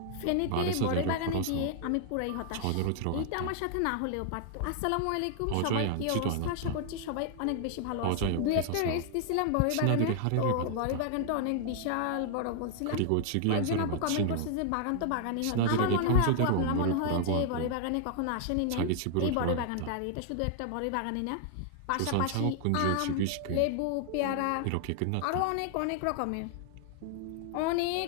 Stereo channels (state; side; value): different; both; correlation 0.00